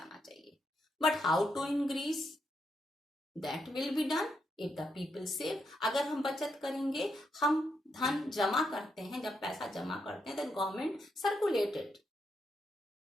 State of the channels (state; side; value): normal; both; correlation 0.81